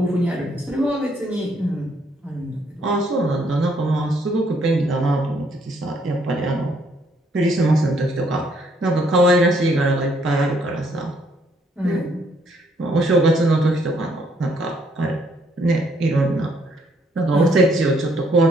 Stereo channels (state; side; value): normal; both; correlation 0.69